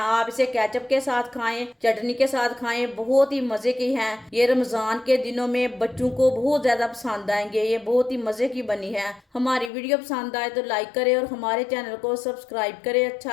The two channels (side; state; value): right; drops out; at 9.7 s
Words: इसे केचप के साथ खाएं, चटनी के साथ खाएं, बहुत ही मज़े की हैं। ये रमज़ान के दिनों में बच्चों को बहुत ज़्यादा पसंद आएंगे। ये बहुत ही मज़े की बनी है। हमारी वीडियो पसंद आए तो लाइक करें और हमारे चैनल को सब्सक्राइब करें।